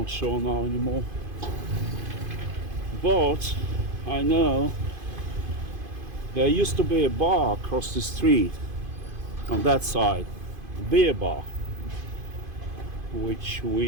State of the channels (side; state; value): left; late; 2.5 ms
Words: sure now anymore, but I know there used to be a bar across the street on that side, a beer bar, which